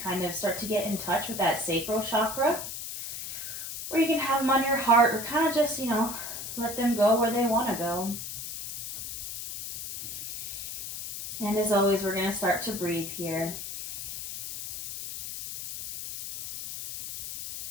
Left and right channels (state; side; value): noise; left; hiss, 7 dB below the sound